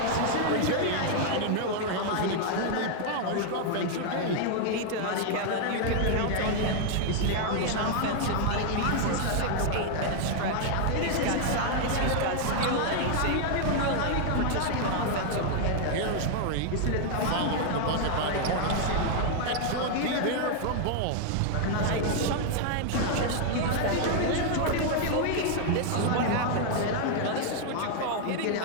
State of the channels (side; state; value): both; different; correlation 0.00